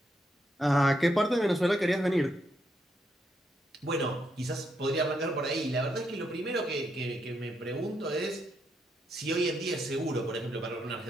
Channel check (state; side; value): normal; both; correlation 0.79